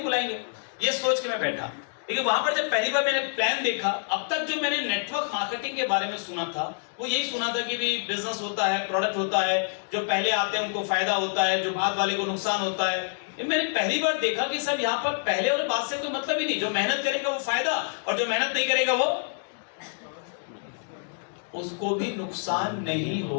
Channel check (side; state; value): right; silent; digital silence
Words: बुलाएंगे। ये सोच के मैं बैठा। लेकिन वहां पर जब पहली बार मैंने प्लान देखा, अब तक जो मैंने नेटवर्क मार्केटिंग के बारे में सुना था वो यही सुना था कि भी बिजनेस होता है, प्रोडक्ट होता है, जो पहले आते हैं उनको फायदा होता है, जो बाद वाले को नुकसान होता है। मैंने पहली बार देखा कि सर यहाँ पर पहले और बाद से कोई मतलब ही नहीं। जो मेहनत करेगा वो फायदा, और जो मेहनत नहीं करेगा वो उसको भी नुकसान नहीं